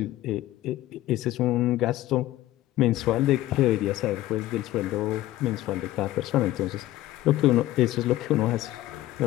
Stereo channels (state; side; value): quieter; right; 15.5 dB